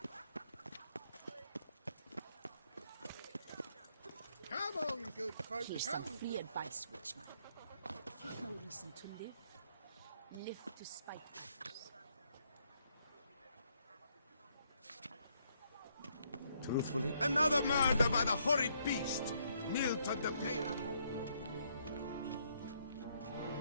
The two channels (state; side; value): inverted; both; correlation -0.72